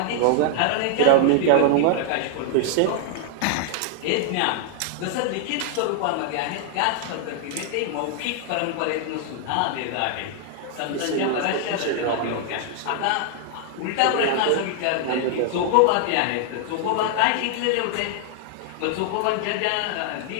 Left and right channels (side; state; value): both; different; correlation 0.00